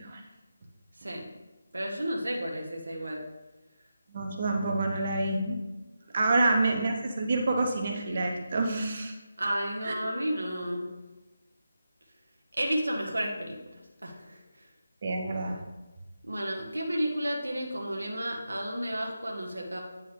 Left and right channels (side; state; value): both; inverted; correlation -0.88